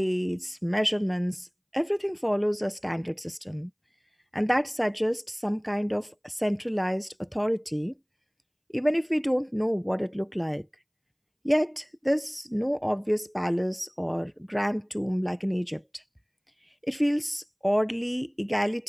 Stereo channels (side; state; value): both; identical; correlation 1.00